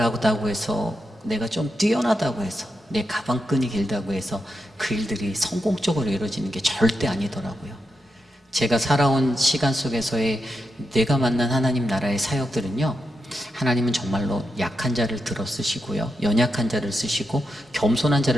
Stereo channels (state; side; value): normal; both; correlation 0.86